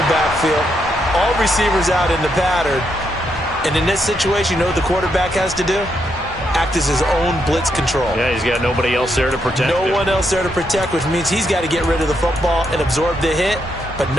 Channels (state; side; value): normal; both; correlation 0.79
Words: backfield. All receivers out in the pattern. And in this situation, you know what the quarterback has to do? Act as his own blitz control. Yeah, he's got nobody else there to protect him. No one else there to protect, which means he's got to get rid of the football and absorb the hit, but